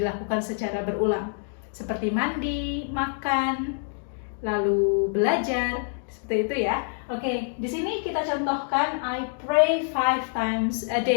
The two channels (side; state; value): right; silent; 61 dB below the other